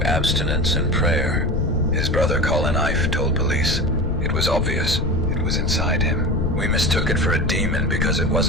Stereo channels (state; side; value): noise; left; rumble, 1 dB below the sound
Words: abstinence and prayer. His brother Colin Ife told police it was obvious it was inside him. We mistook it for a demon because it